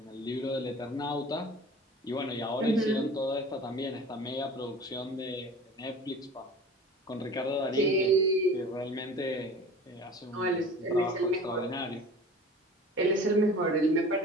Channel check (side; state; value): both; normal; correlation 0.40